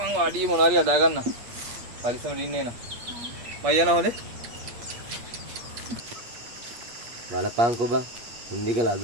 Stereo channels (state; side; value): late; left; 8.6 ms